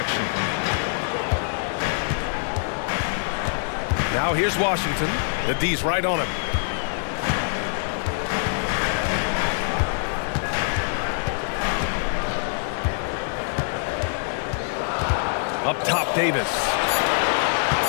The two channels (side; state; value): right; silent; 62 dB below the other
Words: Now here's Washington. The D's right on him. Up top, Davis.